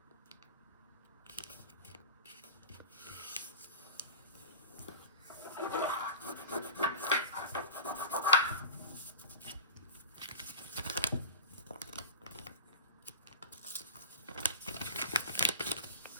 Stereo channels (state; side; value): inverted; both; correlation -0.33